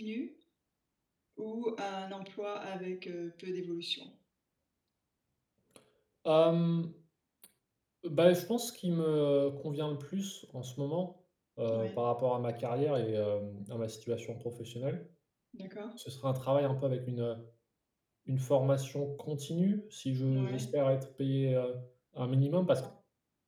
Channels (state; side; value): identical; both; correlation 1.00